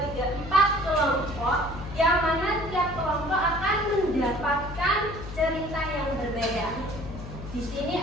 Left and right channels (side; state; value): left; noise; hum, 11 dB below the sound